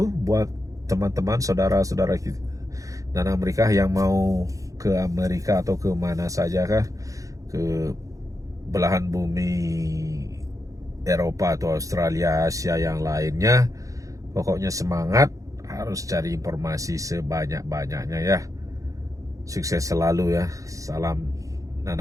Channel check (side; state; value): left; late; 0.16 ms